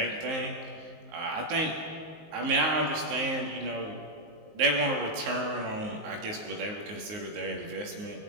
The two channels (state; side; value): late; left; 19 ms